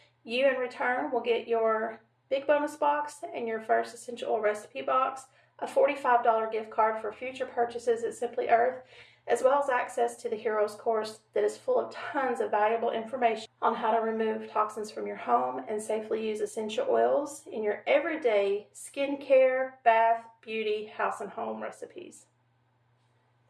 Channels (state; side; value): identical; both; correlation 1.00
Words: You in return will get your big bonus box and your first essential oil recipe box, a $45 gift card for future purchases at Simply Earth, as well as access to the Heroes course that is full of tons of valuable information on how to remove toxins from your home and safely use essential oils in your everyday skincare, bath, beauty, house, and home recipes.